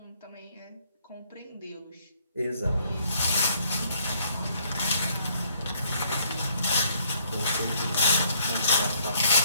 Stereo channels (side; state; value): both; inverted; correlation -0.66